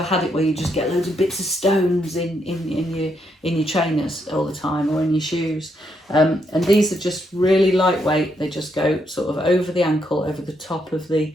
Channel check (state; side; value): normal; both; correlation 0.77